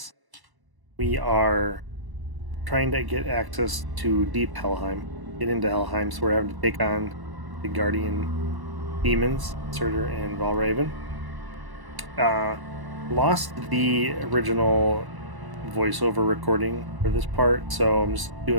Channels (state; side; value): late; left; 1.0 ms